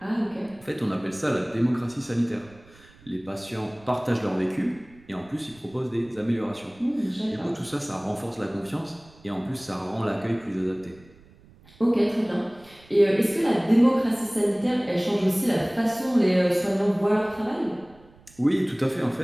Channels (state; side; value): noise; right; rumble, 26 dB below the sound